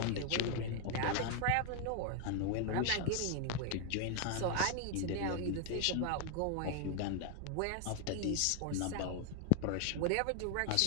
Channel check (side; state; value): both; different; correlation 0.00